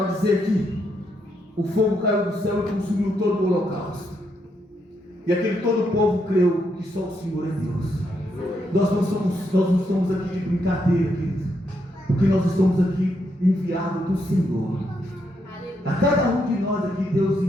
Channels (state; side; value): normal; both; correlation 0.78